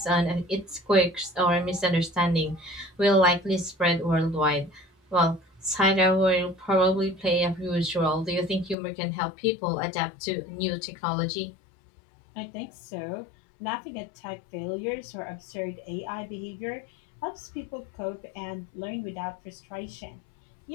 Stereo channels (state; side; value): drops out; right; at 8.8 s